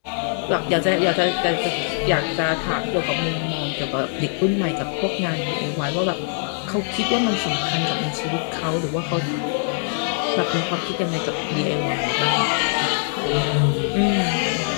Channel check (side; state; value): right; silent; digital silence